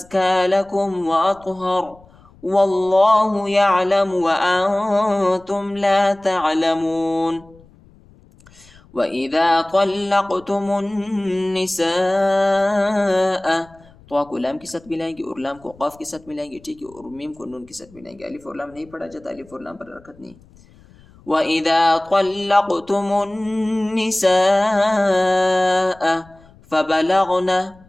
لكم وأطهر، والله يعلم وأنتم لا تعلمون. وإذا طلقتم النساء तो को लाम के साथ मिलाएंगे और लाम को क़ाफ के साथ मिलाएंगे, ठीक है, और मीम को नून के साथ मिलाएंगे। अलिफ और लाम नहीं पढ़ा जाता, अलिफ और लाम पर हरकत नहीं। وإذا طلقتم النساء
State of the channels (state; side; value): noise; left; rumble, 27 dB below the sound